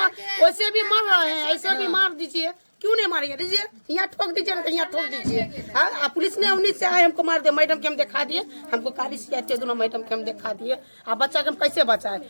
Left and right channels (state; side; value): inverted; both; correlation -1.00